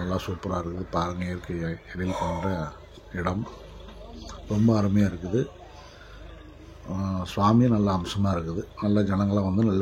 நல்லா சூப்பராக இருக்குது. பாருங்கள், இயற்கை எழில் கொண்ட இடம் ரொம்ப அருமையாக இருக்குது. சுவாமி நல்ல அம்சமாக இருக்குது. நல்ல ஜனங்களாம் வந்து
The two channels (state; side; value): identical; both; correlation 1.00